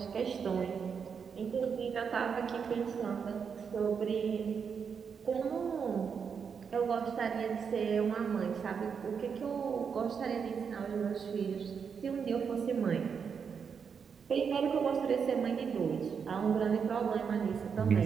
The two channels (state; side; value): quieter; left; 6.5 dB